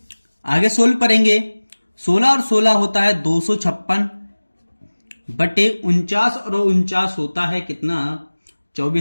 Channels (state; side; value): inverted; both; correlation -1.00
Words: आगे सोल्व करेंगे, 16 और 16 होता है 256 बटे 49 और 49 होता है कितना,